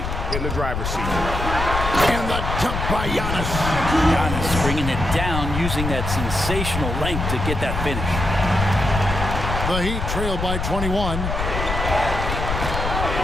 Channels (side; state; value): left; noise; rumble, 3 dB below the sound